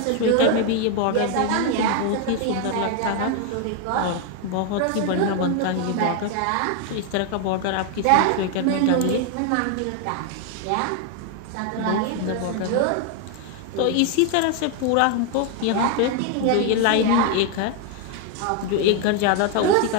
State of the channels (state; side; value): different; both; correlation 0.01